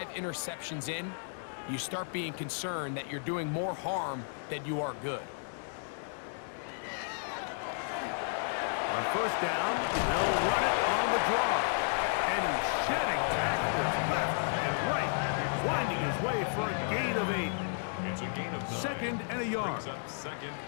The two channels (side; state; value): right; silent; digital silence